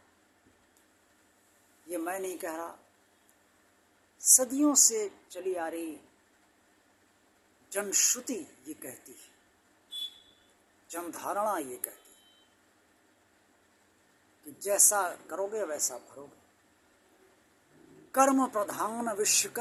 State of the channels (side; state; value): both; identical; correlation 1.00